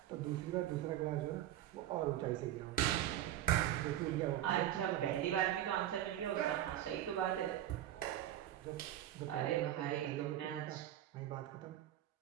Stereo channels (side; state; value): left; quieter; 12.4 dB